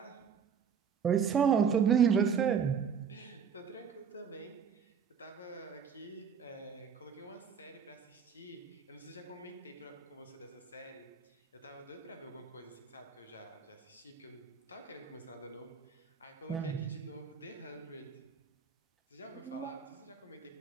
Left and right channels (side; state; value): left; quieter; 7.0 dB